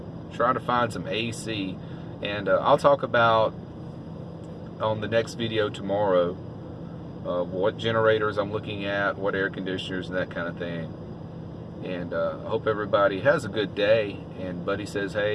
try to find some AC. And I'll talk about on the next video tomorrow what generators I'm looking at, what air conditioners and that kind of thing. And I hope everybody has a good day. And Buddy says,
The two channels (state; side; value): identical; both; correlation 1.00